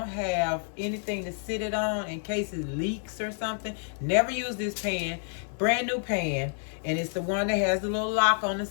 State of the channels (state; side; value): silent; right; 58 dB below the other